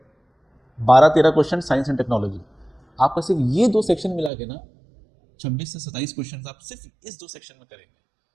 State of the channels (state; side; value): drops out; left; at 4.3 s